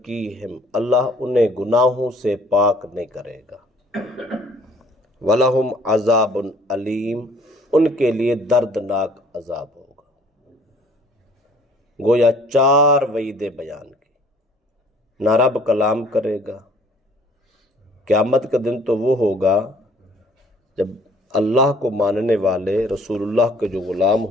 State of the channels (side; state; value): both; normal; correlation 0.57